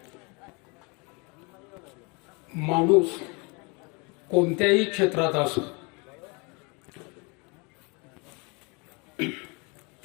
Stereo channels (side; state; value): right; quieter; 30.2 dB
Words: माणूस कोणत्याही क्षेत्रात असो